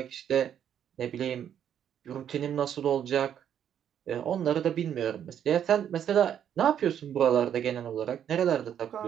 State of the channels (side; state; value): left; quieter; 9.4 dB